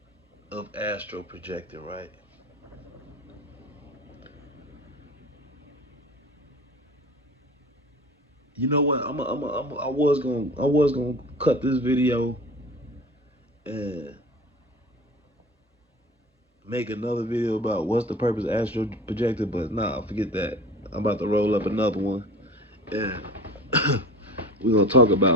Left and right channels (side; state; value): both; normal; correlation 0.39